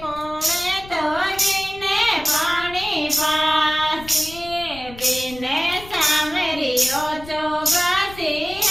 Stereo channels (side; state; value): left; noise; rumble, 17 dB below the sound